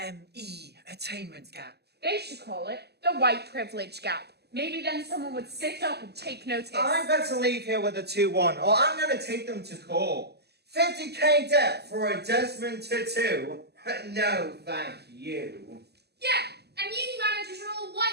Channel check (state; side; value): late; left; 0.48 ms